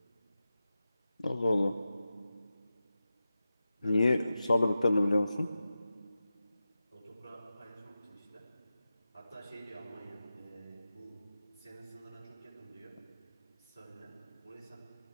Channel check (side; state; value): both; inverted; correlation -0.93